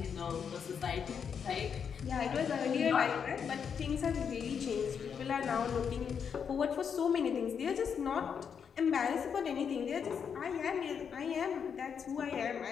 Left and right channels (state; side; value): quieter; right; 7.0 dB